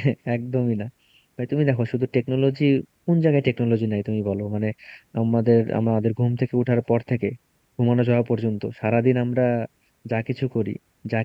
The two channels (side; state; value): both; identical; correlation 1.00